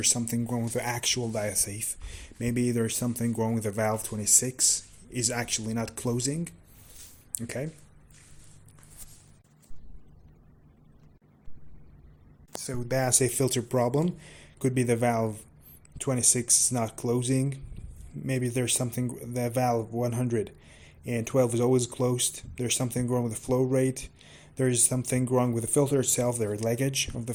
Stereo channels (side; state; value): both; identical; correlation 1.00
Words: something wrong with the actual diasafe. Maybe there's something wrong with the valve 26 is actually not closing. Okay, so diasafe filter problem could be the valve 26 is not closing. Maybe there's something, the valve 112 is always closed. There's something wrong with the flow rate. There's something wrong with the filter itself. There's leakage of the